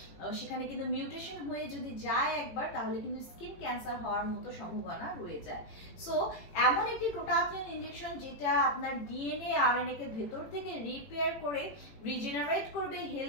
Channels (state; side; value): late; right; 18 ms